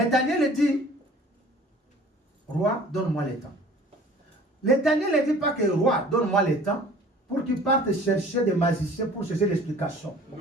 Daniel dit, roi, donne-moi le temps. Le Daniel ne dit pas que roi, donne-moi le temps pour qu'il parte chercher des magiciens pour chercher l'explication.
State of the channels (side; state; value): both; normal; correlation 0.48